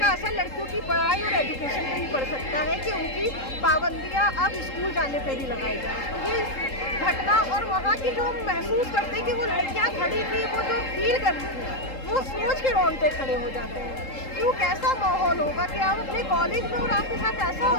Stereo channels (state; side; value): late; right; 3.8 ms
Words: असर लड़कियों की पढ़ाई और एजुकेशन पे भी पड़ सकता है कि उनकी पाबंदियाँ अब स्कूल जाने पे भी लगाई जाए। ये घटना और वहाँ की जो हम महसूस करते हैं कि वो लड़कियाँ खड़ी थी, वो जो फील करती थी, वो सोच के रोंगटे खड़े हो जाते हैं। क्यों, कैसा माहौल होगा कि आप अपने कॉलेज में और आपके साथ ऐसा हो